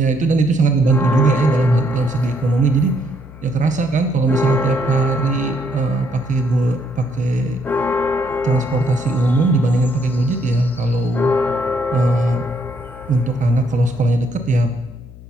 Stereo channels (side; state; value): left; noise; hum, 18 dB below the sound